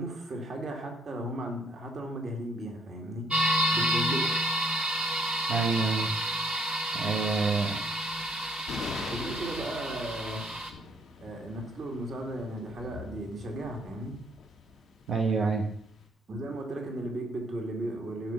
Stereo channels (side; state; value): both; normal; correlation 0.65